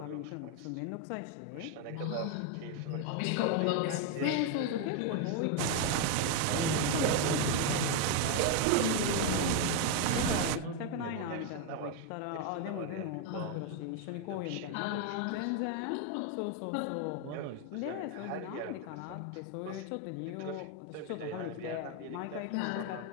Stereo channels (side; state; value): both; different; correlation 0.01